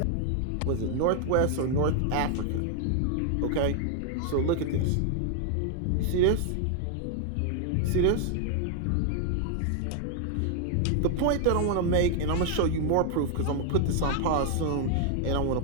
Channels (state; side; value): different; both; correlation 0.00